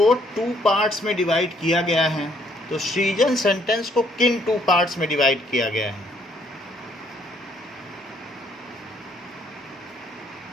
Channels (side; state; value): both; normal; correlation 0.67